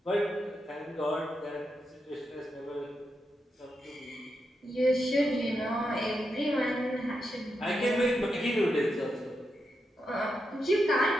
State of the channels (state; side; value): normal; both; correlation 0.85